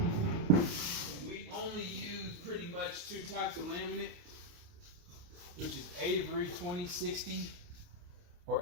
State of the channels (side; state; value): left; late; 28 ms